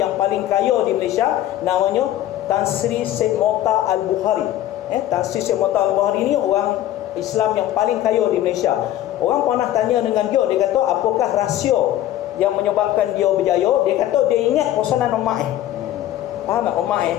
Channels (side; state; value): right; quieter; 13.1 dB